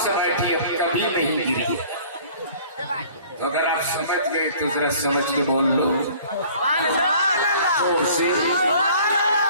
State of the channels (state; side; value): inverted; both; correlation -0.51